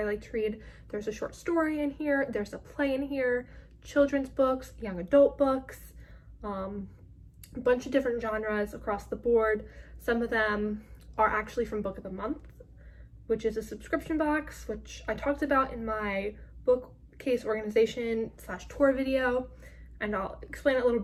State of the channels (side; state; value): both; identical; correlation 1.00